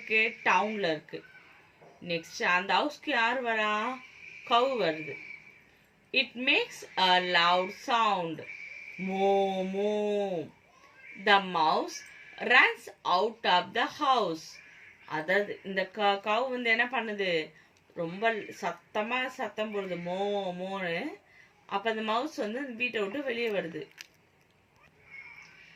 டவுன்ல இருக்கு. நெக்ஸ்ட் அந்த ஹவுஸ்க்கு யார் வரா? கவ் வருது. It makes a loud sound. Moo moo. The mouse runs out of the house. அதாவது இந்த கவ் வந்து என்ன பண்ணுது? ரொம்ப சத்தமா சத்தம் போடுது, மோ மோன்னு. அப்ப அந்த மவுஸ் வந்து வீட்டை விட்டு வெளியே வருது.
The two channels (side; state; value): both; identical; correlation 1.00